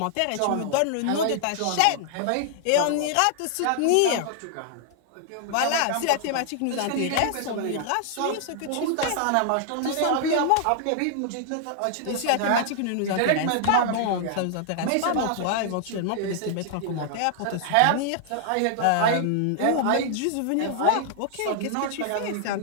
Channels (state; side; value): different; both; correlation -0.01